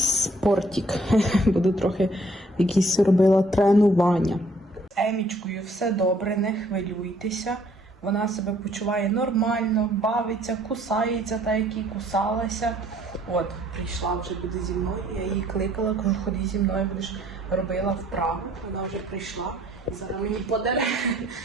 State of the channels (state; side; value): normal; both; correlation 0.61